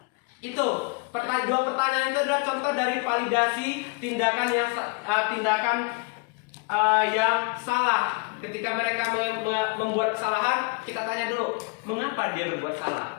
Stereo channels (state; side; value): quieter; right; 30.7 dB